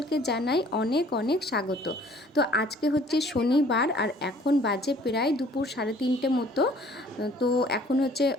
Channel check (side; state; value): both; normal; correlation 0.55